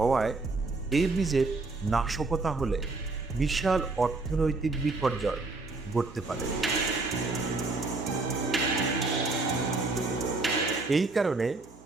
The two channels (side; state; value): left; quieter; 3.5 dB